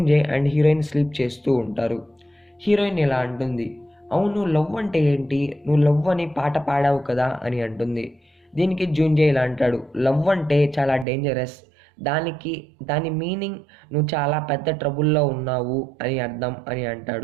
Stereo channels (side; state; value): left; drops out; at 11.1 s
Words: అండ్ హీరోయిన్ స్లీప్ చేస్తూ ఉంటారు. హీరోయిన్ ఇలా అంటుంది, అవును లవ్ అంటే ఏంటి, నువ్వు లవ్ అని పాట పాడావు కదా అని అంటుంది. దీనికి జూన్జే ఇలా అంటాడు, లవ్ అంటే చాలా డేంజరస్, దాని మీనింగ్ నువ్వు చాలా పెద్ద ట్రబుల్లో ఉన్నావు అని అర్థం అని